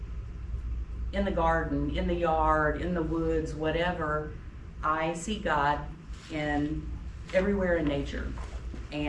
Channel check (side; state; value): both; identical; correlation 1.00